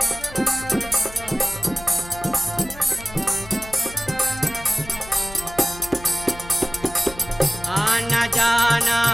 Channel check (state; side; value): noise; left; hum, 17 dB below the sound